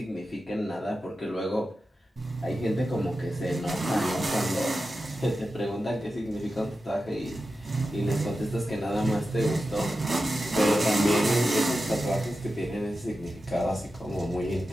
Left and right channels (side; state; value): both; normal; correlation 0.92